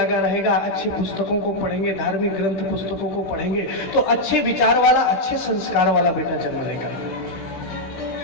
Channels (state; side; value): late; right; 16 ms